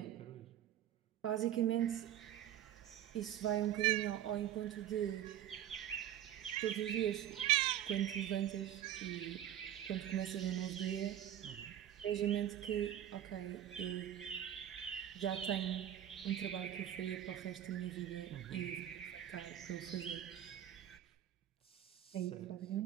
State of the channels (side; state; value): left; quieter; 11.3 dB